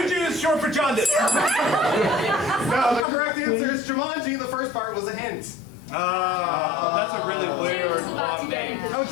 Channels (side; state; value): right; drops out; at 3.1 s